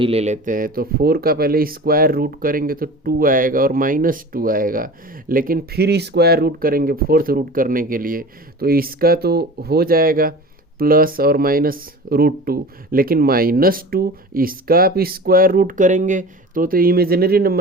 ले लेते हैं, तो 4 का पहले स्क्वायर रूट करेंगे तो 2 आएगा और -2 आएगा, लेकिन फिर स्क्वायर रूट करेंगे 4th रूट करने के लिए तो इसका तो हो जाएगा प्लस और -√2, लेकिन -2 इसका आप स्क्वायर रूट करेंगे तो इमेजिनरी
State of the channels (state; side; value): normal; both; correlation 0.36